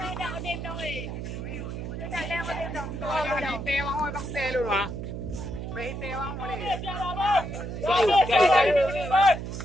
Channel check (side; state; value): right; noise; hum, 6 dB below the sound